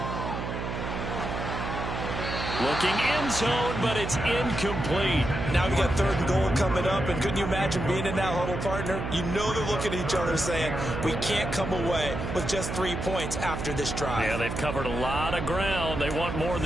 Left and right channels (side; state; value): right; noise; hum, 5 dB below the sound